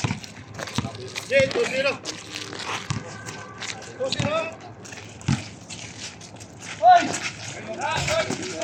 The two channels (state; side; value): identical; both; correlation 1.00